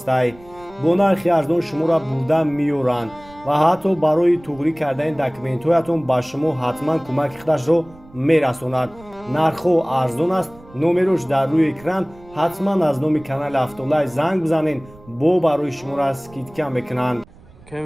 бо нархи арзон шуморо бурда меёранд ва ҳатто барои туғрӣ кардани документҳоятон ба шумо ҳатман кӯмаки худашро мерасонад. нархҳо арзон аст. номерош дар рӯи экран. ҳатман аз номи канали Автолайф занг бизанед, бо барои шуморо скидка мекунанд.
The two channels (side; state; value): right; noise; rumble, 23 dB below the sound